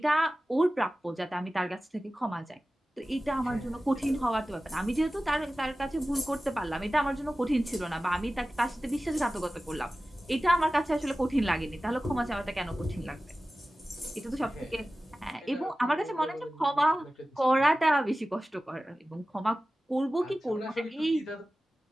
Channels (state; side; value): normal; both; correlation 0.96